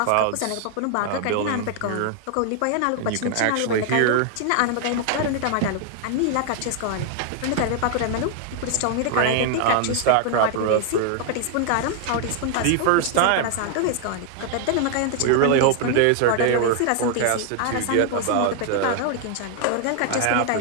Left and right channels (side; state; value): both; different; correlation 0.00